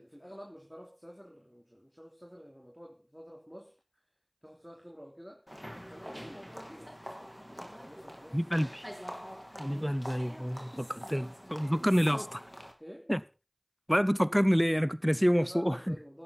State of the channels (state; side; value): identical; both; correlation 1.00